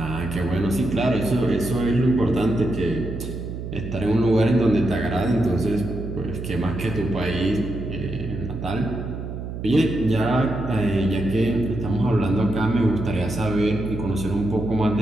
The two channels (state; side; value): noise; right; hum, 7 dB below the sound